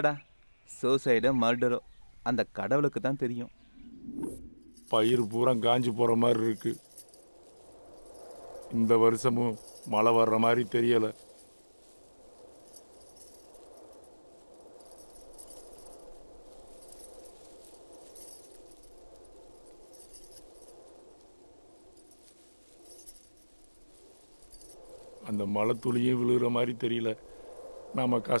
சூசைடோ மர்டரோ அந்த கடவுளுக்கு தான் தெரியும். பயிர் பூரா காஞ்சி போகிற மாதிரி இருக்கு. இந்த வருஷமும் மழை வர்ற மாதிரி தெரியலை. அந்த மழை துளியும் விழுகிற மாதிரி தெரியல. நாம்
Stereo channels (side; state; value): both; inverted; correlation -1.00